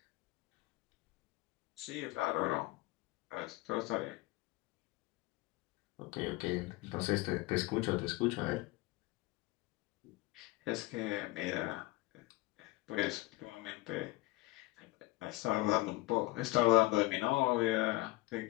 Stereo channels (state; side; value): quieter; right; 20.7 dB